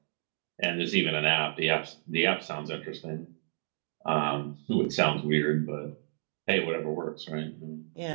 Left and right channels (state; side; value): silent; left; digital silence